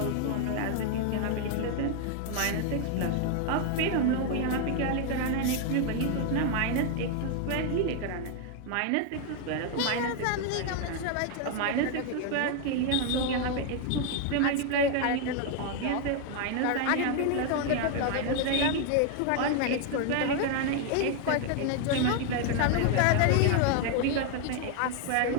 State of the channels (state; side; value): different; both; correlation 0.00